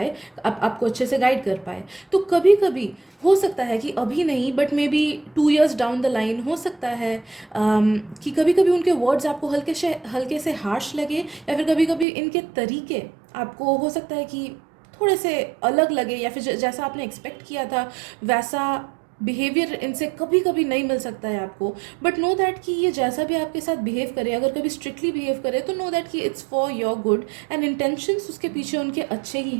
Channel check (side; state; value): left; drops out; at 12.1 s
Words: आपको अच्छे से गाइड कर पाए। तो कभी कभी हो सकता है कि अभी नहीं but may be 2 years down the line हो सकता है कि कभी कभी उनके वर्ड्स आपको हल्के से हार्श लगे, या फिर कभी कभी इनके तरीके आपको हो सकता है कि थोड़े से अलग लगे, या फिर जैसा आपने एक्सपेक्ट किया था वैसा बिहेवियर इनसे कभी कभी नहीं मिल सकता है आपको। बट नो दैट कि ये जैसा भी आपके साथ बिहेव करे, अगर कभी स्ट्रिक्टली बिहेव करे तो नो दैट कि it's for your good and intentions उसके पीछे उनके अच्छे ही